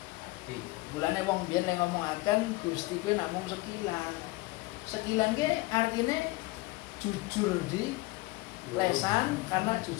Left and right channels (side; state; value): right; quieter; 21.7 dB